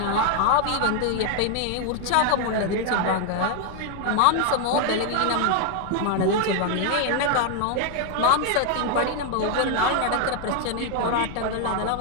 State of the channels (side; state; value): both; different; correlation 0.00